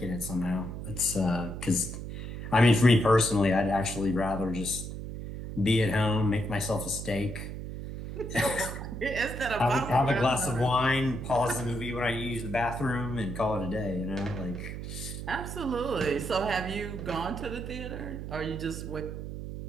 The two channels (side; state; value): right; noise; hum, 7 dB below the sound